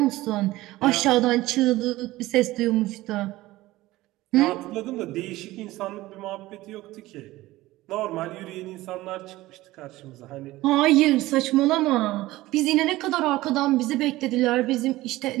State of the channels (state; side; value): quieter; left; 17.7 dB